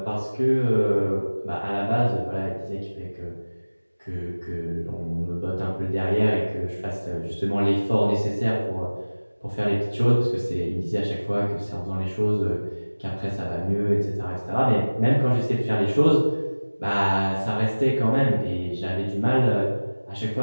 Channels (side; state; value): both; inverted; correlation -1.00